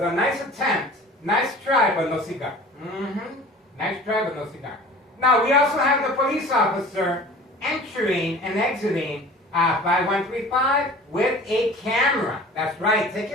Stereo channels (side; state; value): both; normal; correlation 0.43